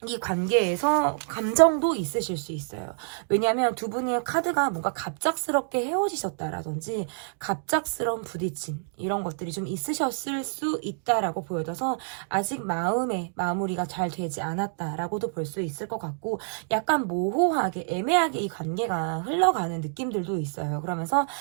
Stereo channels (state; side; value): silent; left; digital silence